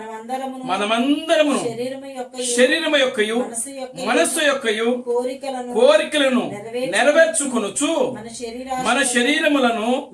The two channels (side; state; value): both; identical; correlation 1.00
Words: మనమందరము శరీరము యొక్కయు మనస్సు యొక్కయు కోరికలను నెరవేర్చుకొనుచు మన